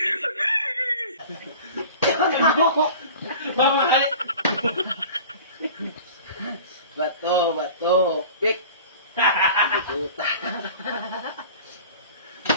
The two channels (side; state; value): both; inverted; correlation -0.41